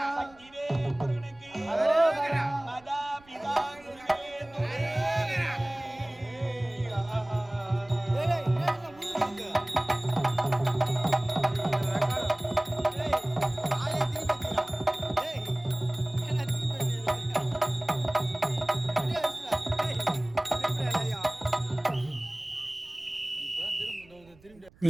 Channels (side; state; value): right; noise; rumble, 27 dB below the sound